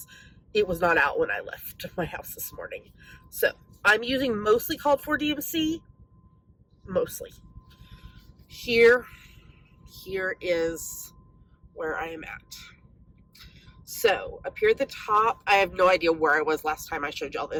it was not out when I left my house this morning. So I'm using mostly called for DMC. Mostly. Here is where I am at. So up here at the top, I have no idea where I was last time I showed y'all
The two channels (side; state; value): both; identical; correlation 1.00